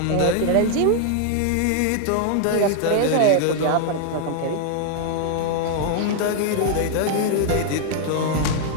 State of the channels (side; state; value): both; different; correlation 0.00